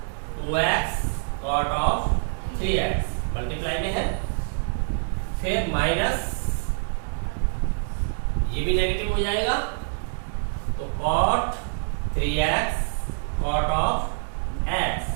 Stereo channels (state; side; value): silent; left; digital silence